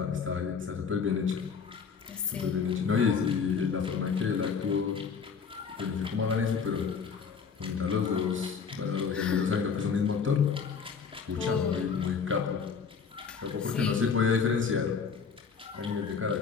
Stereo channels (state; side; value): quieter; right; 6.0 dB